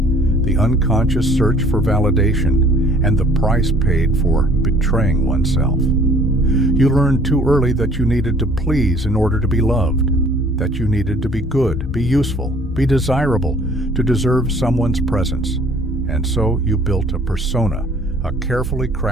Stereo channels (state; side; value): normal; both; correlation 0.55